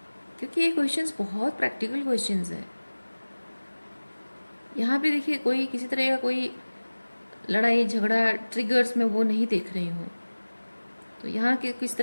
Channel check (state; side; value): inverted; both; correlation -1.00